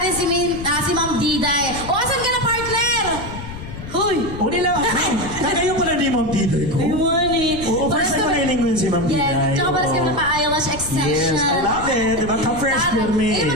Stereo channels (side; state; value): left; noise; rumble, 11 dB below the sound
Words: si Ma'am Diday. Asan ka na, partner? Huy! Uli lang. Kagayo pala ni Ma'am Diday ko. Good morning. Oo, first time ko nailing ko yun si Ma'am Diday. Yes, tsaka para sa naka-eyelash extension. Yes, I love it. Diba? Ka-fresh pirmi. Hindi